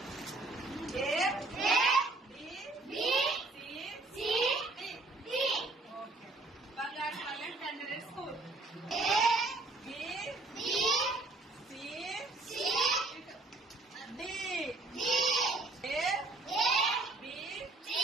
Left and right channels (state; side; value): quieter; left; 3.2 dB